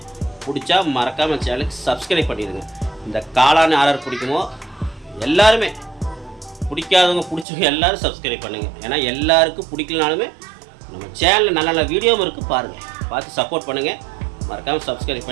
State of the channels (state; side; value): drops out; left; at 7.5 s